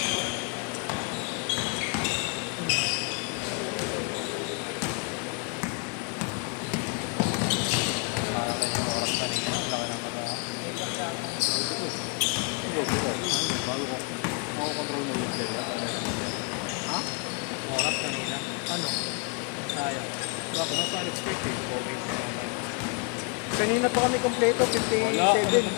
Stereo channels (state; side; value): quieter; right; 35.7 dB